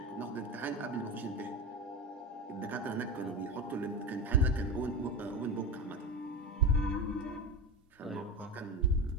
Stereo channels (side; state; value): both; normal; correlation 0.22